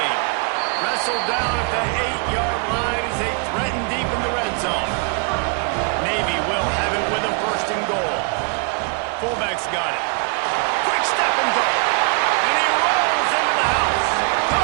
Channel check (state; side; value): quieter; left; 36.2 dB